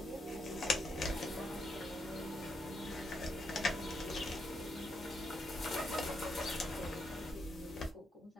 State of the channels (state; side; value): normal; both; correlation 0.80